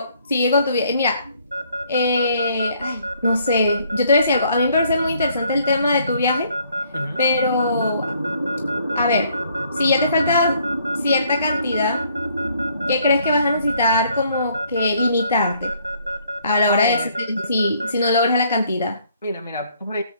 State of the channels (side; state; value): both; inverted; correlation -0.66